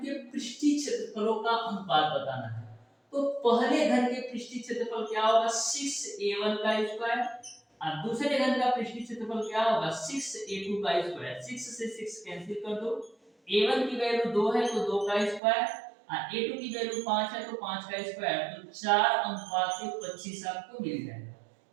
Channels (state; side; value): drops out; left; at 15.4 s